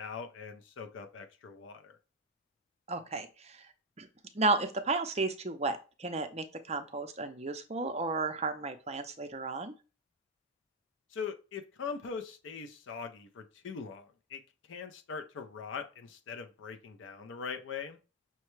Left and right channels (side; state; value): both; normal; correlation -0.05